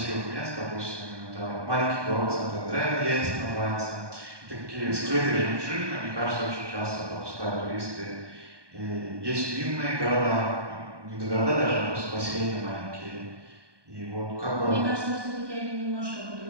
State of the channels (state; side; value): late; left; 1.2 ms